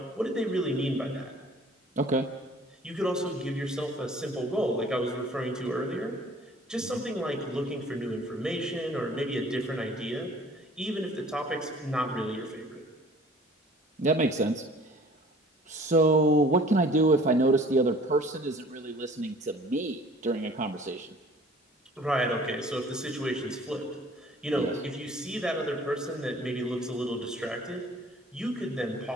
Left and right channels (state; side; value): normal; both; correlation 0.51